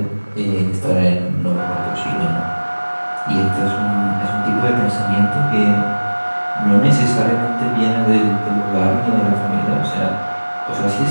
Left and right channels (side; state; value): both; inverted; correlation -1.00